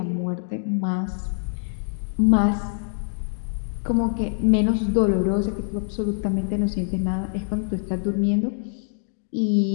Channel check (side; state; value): right; silent; digital silence